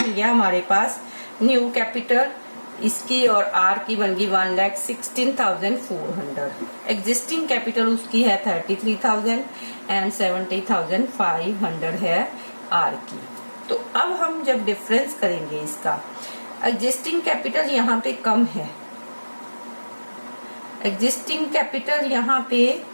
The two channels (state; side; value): inverted; both; correlation -1.00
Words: गया हमारे पास न्यू कैपिटल, इसकी और आर की बन गई 1,16,400। एग्जिस्टिंग कैपिटल उसकी है 33,000 एंड 70,500 है आर की। तो अब हम जब डिफरेंस करेंगे इसका, एग्जिस्टिंग कैपिटल यहाँ पे कम है, एग्जिस्टिंग कैपिटल यहाँ पे